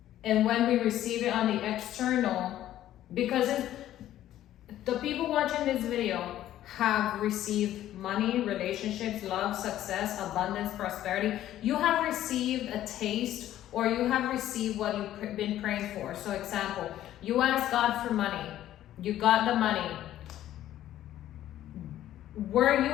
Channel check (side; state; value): right; quieter; 12.8 dB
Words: and when we receive it on the external, because the people watching this video have received money, relationships, love, success, abundance, prosperity. You have received a taste, or you have received what you've been praying for. So example, you asked God for money. You got the money. Were you